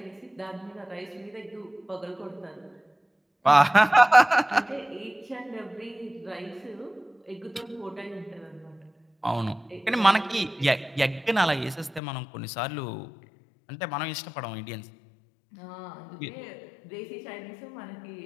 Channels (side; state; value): right; drops out; at 12.0 s